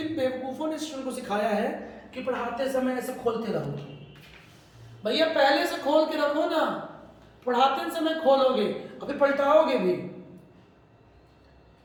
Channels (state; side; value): identical; both; correlation 1.00